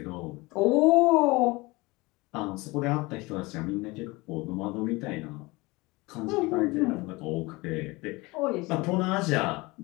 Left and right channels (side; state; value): right; quieter; 23.2 dB